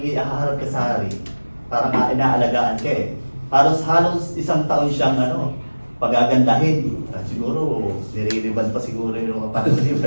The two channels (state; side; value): inverted; both; correlation -1.00